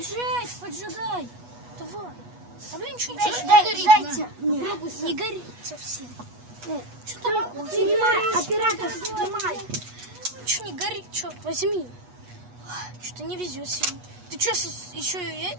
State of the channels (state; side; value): late; left; 8.2 ms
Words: поджигай. Давай. Да блин, что Дайте. не горит совсем. Что там? Снимай, оператор, снимай. Ничего не горит, что? Возьми. Что-то не везет сегодня. Ты что, еще...